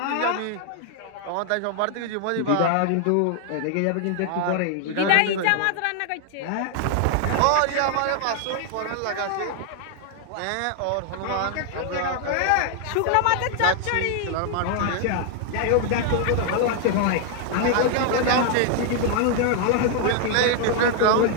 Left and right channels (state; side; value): different; both; correlation 0.00